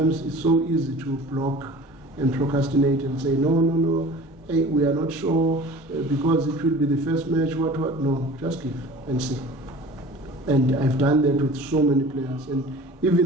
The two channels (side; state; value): both; normal; correlation 0.42